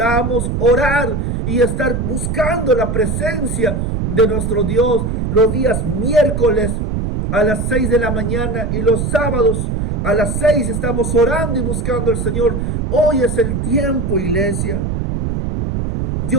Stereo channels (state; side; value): noise; right; rumble, 2 dB below the sound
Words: orar y estar buscando la presencia de nuestro Dios los días miércoles a las 6 de la mañana y los sábados A las 6 estamos orando y buscando al Señor. Hoy es el tiempo, iglesia.